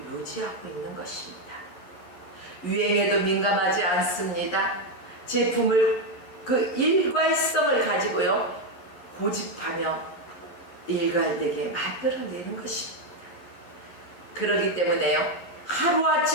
유지하고 있는 것입니다. 유행에도 민감하지 않습니다. 제품을 그 일괄성을 가지고요, 고집하며 일괄되게 만들어내는 것입니다. 그렇기 때문에요,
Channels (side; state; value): right; late; 11 ms